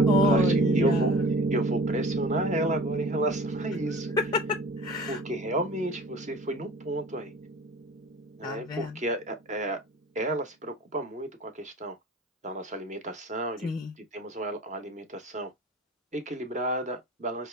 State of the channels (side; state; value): both; normal; correlation 0.43